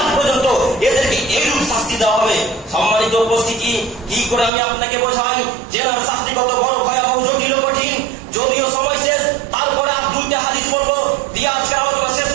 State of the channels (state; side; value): drops out; left; at 4.5 s